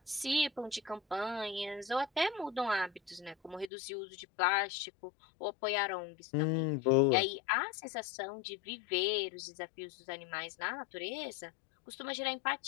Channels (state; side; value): drops out; right; at 3.7 s